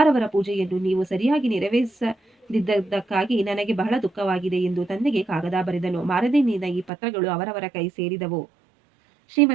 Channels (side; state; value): left; drops out; at 6.9 s